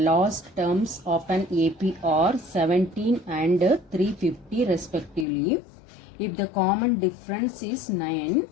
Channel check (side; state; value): right; drops out; at 5.2 s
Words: terms of an AP are 17 and 350 respectively. If the common difference is 9,